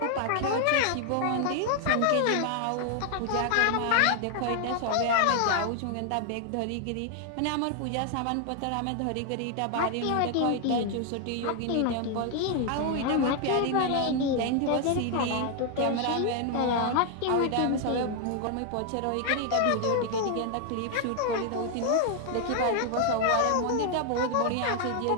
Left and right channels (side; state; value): both; different; correlation 0.00